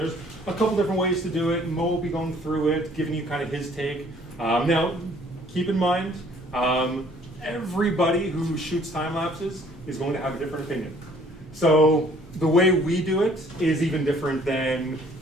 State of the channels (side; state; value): both; normal; correlation 0.58